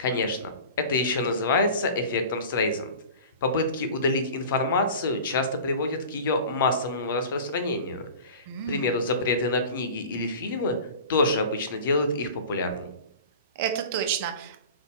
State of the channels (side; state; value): both; inverted; correlation -0.37